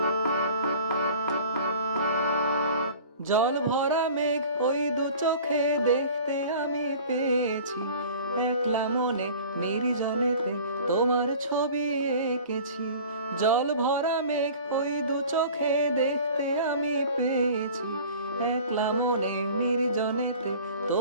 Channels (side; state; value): both; inverted; correlation -0.44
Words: জল ভরা মেঘ ওই দু চোখে দেখতে আমি পেয়েছি, একলা মনে নির্জনেতে তোমার ছবি এঁকেছি। জল ভরা মেঘ ওই দু চোখে দেখতে আমি পেয়েছি, একলা মনে নির্জনেতে